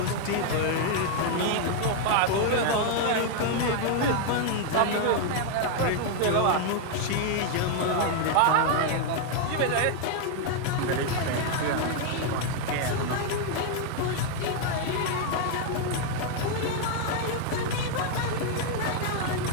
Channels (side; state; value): both; different; correlation 0.00